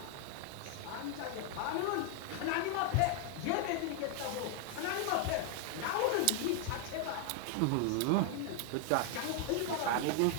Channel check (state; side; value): different; both; correlation 0.00